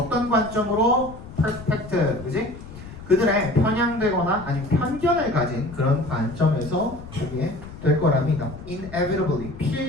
관점으로 perspective, 그지? 그들의 편향되거나 아니면 편견을 가진 그런 관점에서 보게 될 거랍니다. Inevitably,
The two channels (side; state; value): left; noise; rumble, 15 dB below the sound